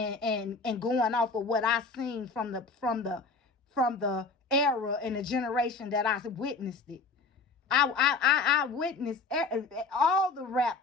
going off of what I seen from the era and the generation that I witnessed it. I witnessed all the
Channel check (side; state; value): right; quieter; 4.0 dB